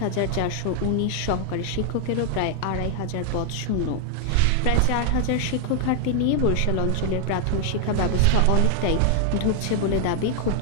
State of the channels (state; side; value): different; both; correlation 0.00